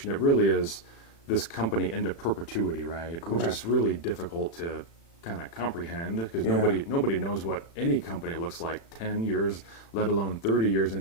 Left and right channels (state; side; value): late; right; 36 ms